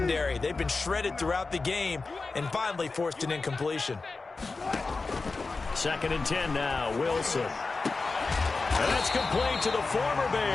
They've been shredded throughout the game and finally forced an incompletion. 2nd and 10 now, Wilson. And that's complete to the former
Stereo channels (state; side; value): quieter; right; 3.9 dB